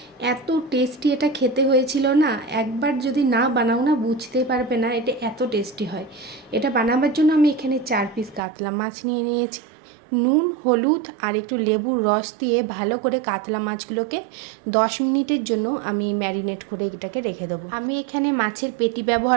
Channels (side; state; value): left; drops out; at 8.4 s